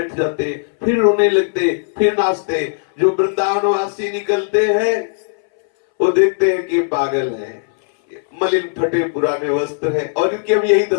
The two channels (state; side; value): silent; right; 63 dB below the other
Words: जाते, फिर रोने लगते, फिर नाचते। जो वृंदावनवासी निकलते हैं वो देखते हैं कि पागल है, मलिन फटे पुराने वस्त्र है, और इनकी अब यही